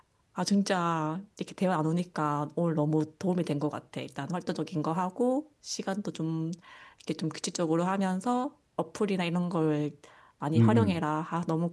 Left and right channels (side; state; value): both; identical; correlation 1.00